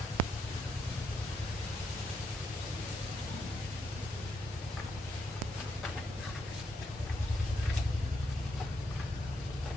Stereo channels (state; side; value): normal; both; correlation 0.79